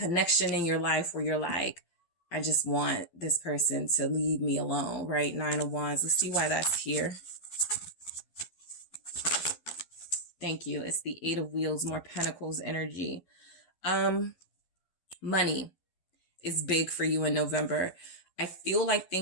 in your life where you're like, I just want this person to leave me alone, right? 9 of Wands. Let's see why that's here. Thank you. It's the 8 of Wheels, more Pentacles energy. Money is big for you in November. I feel like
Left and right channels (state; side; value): late; right; 12 ms